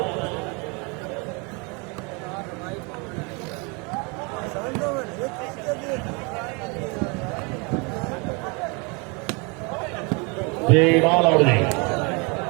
जी बाल और जी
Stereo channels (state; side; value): quieter; left; 30.6 dB